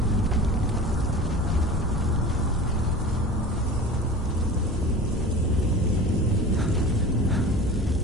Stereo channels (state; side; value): normal; both; correlation 0.37